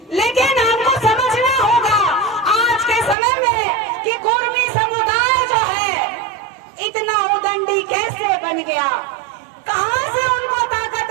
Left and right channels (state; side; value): drops out; left; at 3.2 s